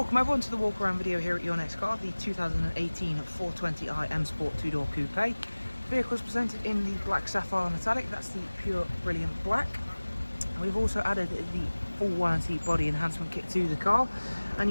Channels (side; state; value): both; inverted; correlation -1.00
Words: everyone to the walk around video here at Your Next Car, the 2018 420i M Sport 2-door coupe. The vehicle is presented in the black sapphire metallic, that's the pure brilliant black. And we've also added the full warranty body enhancement kit to the car,